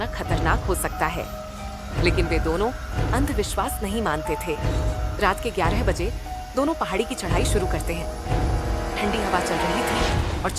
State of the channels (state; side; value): identical; both; correlation 1.00